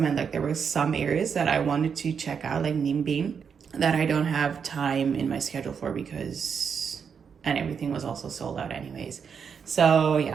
like there were some areas that I wanted to check out, like Nimbin. that I don't have time in my schedule for because, and everything was also sold out anyways. So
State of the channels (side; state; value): left; quieter; 6.7 dB